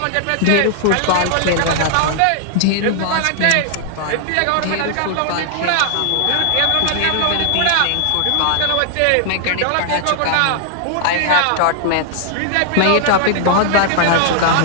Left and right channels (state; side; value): different; both; correlation 0.00